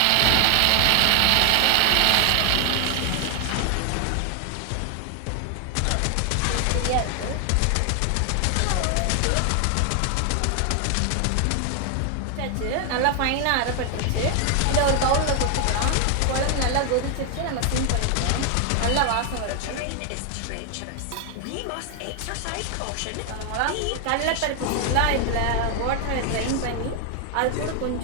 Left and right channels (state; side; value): different; both; correlation 0.00